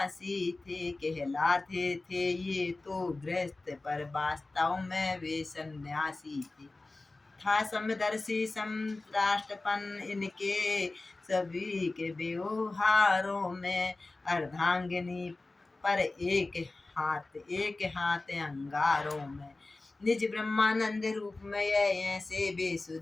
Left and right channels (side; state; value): right; quieter; 3.2 dB